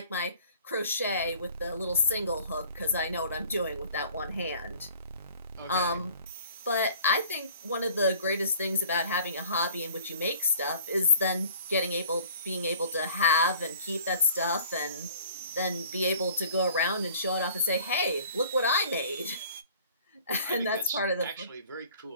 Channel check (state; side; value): inverted; both; correlation -0.51